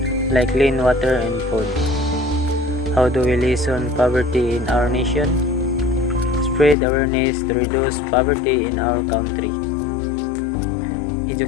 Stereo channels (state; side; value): drops out; right; at 6.8 s